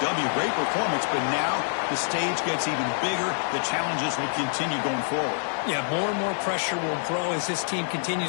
W. Great performance, but now the stage gets even bigger. The challenges will continue going forward. Yeah, more and more pressure will grow as this team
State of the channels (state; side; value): silent; right; 61 dB below the other